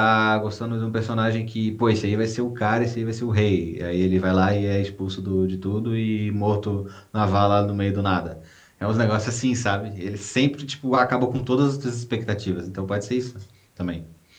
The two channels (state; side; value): identical; both; correlation 1.00